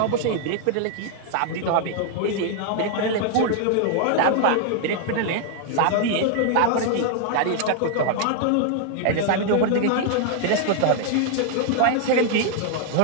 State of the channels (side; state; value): both; different; correlation 0.00